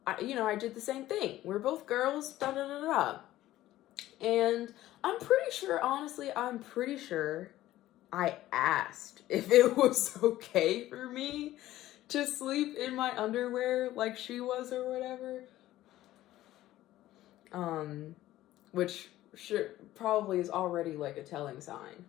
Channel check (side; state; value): right; quieter; 14.9 dB